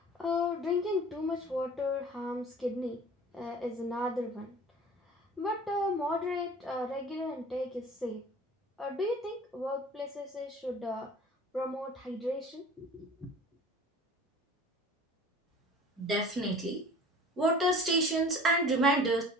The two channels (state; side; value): normal; both; correlation 0.44